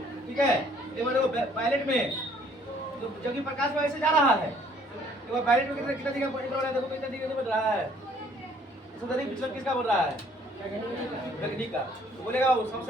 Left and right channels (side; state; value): both; normal; correlation 0.60